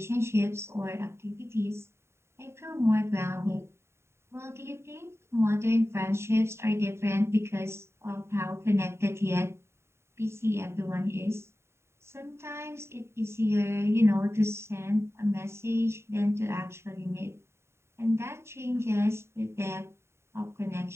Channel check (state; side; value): late; left; 0.13 ms